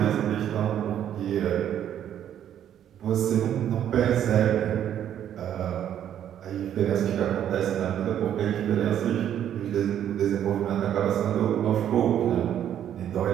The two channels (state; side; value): quieter; left; 10.2 dB